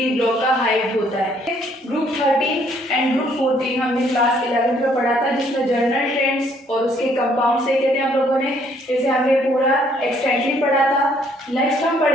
ब्लॉक का हाइट होता है। ग्रुप 13 एंड ग्रुप 14 हमने क्लास 11 में पढ़ा था, जिसमें जनरल ट्रेंड्स और उसके कंपाउंड से कहते हैं हम लोगों ने, इसे हमने पूरा एक्सटेंडली पढ़ा था। नेक्स्ट हम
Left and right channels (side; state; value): both; normal; correlation 0.65